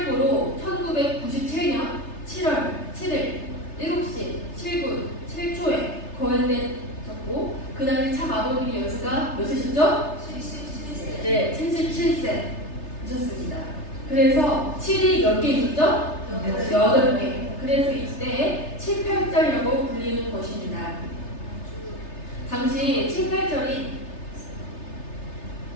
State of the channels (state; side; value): late; right; 3.3 ms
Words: 1997년 7월 7일 7시 7분 7초에 거행됐었고 그 당시 참 아버님이 연세가 몇 세셨죠? 77세. 네, 77세이셨습니다. 그래서 7이 몇 개 있었죠? 8개. 그래서 이때 7, 8절이라고 불리는 것입니다. 당시 7, 8절이